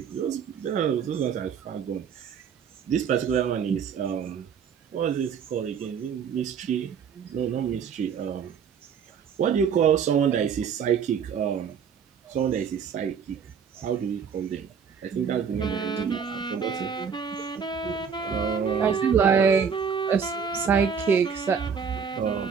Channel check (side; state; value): left; quieter; 6.8 dB